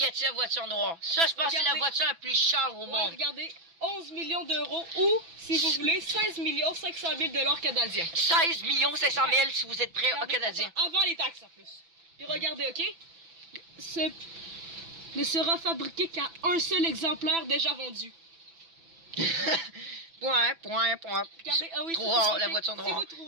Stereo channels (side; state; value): left; late; 6.0 ms